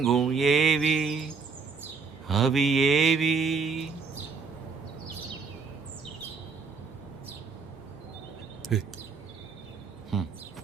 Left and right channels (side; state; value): left; quieter; 5.0 dB